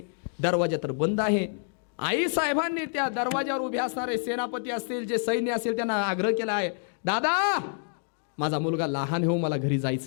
दरवाजा तर बंद आहे. आई साहेबांनी त्या दरवाजावर उभे असणारे सेनापती असतील, जे सैन्य असेल, त्यांना आग्रह केला आहे, दादा माझा मुलगा लहान हो, मला घरी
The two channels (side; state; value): right; silent; digital silence